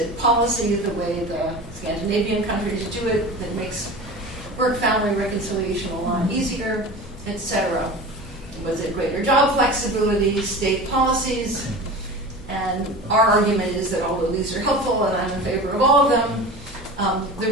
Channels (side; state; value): both; normal; correlation 0.34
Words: policy, the way the Scandinavian countries do it, that makes work-family reconciliation a lot easier, etc.? Was it greater job flexibility, state policies? And our argument is that although these are helpful, and I'm in favor of all of them, the